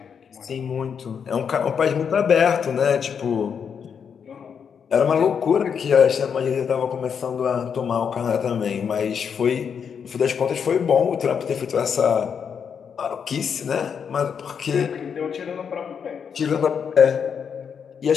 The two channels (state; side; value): quieter; right; 7.0 dB